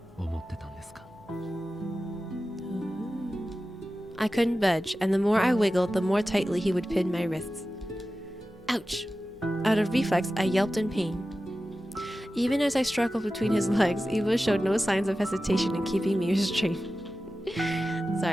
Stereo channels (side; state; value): right; noise; hum, 28 dB below the sound